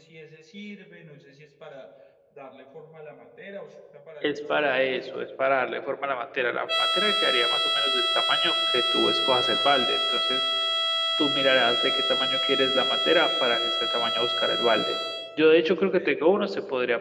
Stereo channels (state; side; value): identical; both; correlation 1.00